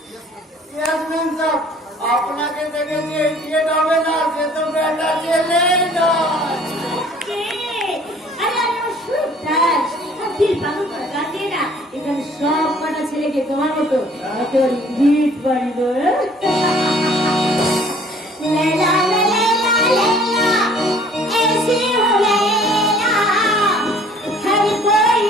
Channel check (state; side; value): normal; both; correlation 0.55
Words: আপনাকে দেখে যে ইডিয়েট হবে না সে তো বেটা ছেলে নয়। এখানে সব কটা ছেলেকে তোমার মতো একেবারে গিট বাড়িব।